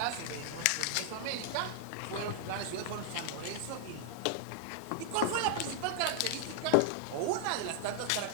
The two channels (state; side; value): different; both; correlation 0.00